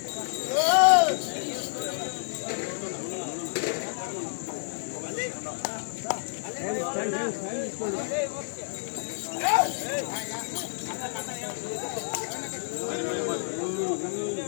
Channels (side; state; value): right; silent; digital silence